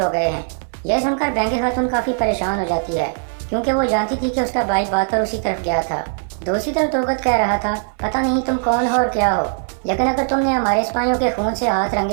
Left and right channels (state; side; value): silent; left; 62 dB below the other